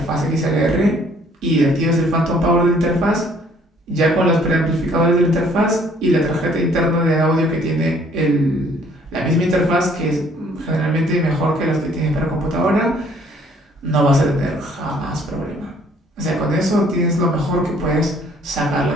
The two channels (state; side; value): normal; both; correlation 0.60